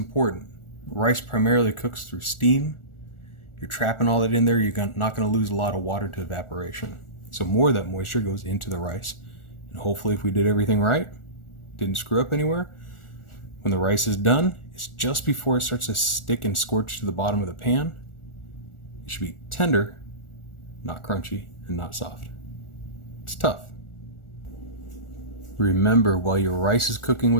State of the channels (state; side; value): late; right; 1.4 ms